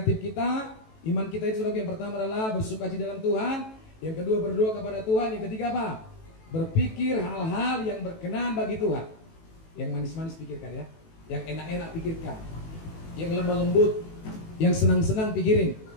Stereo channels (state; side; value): late; right; 18 ms